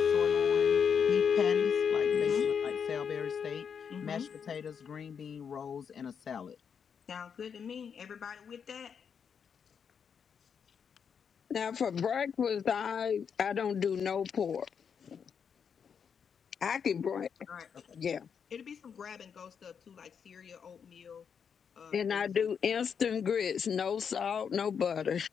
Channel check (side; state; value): right; quieter; 7.0 dB